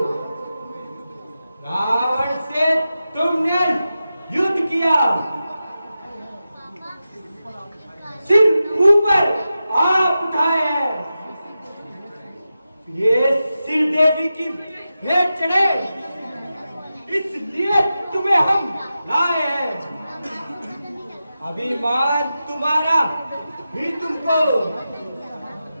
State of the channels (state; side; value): inverted; both; correlation -0.92